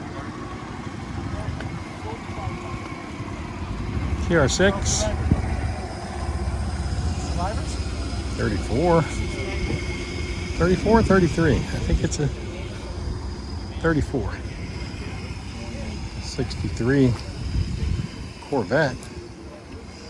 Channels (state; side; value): identical; both; correlation 1.00